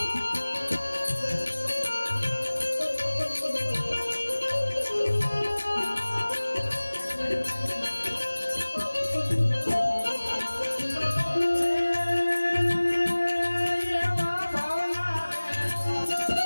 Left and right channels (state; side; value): inverted; both; correlation -1.00